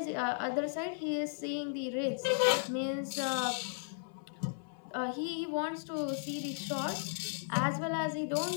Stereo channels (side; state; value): right; silent; 54 dB below the other